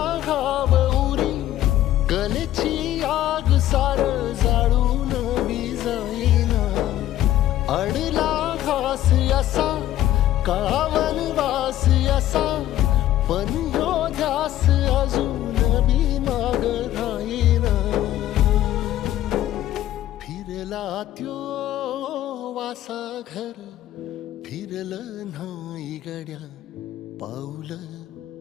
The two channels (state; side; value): quieter; right; 13.2 dB